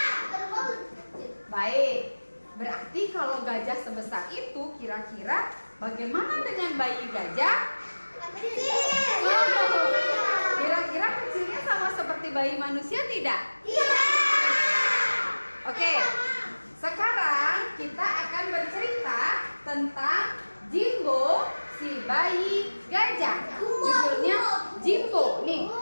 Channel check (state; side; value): inverted; both; correlation -1.00